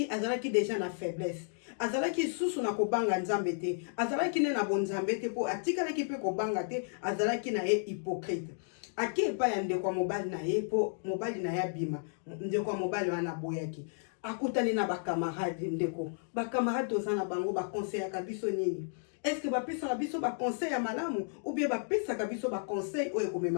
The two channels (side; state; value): right; silent; digital silence